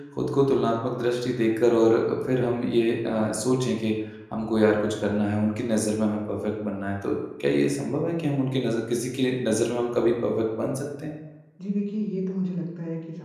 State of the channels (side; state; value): both; identical; correlation 1.00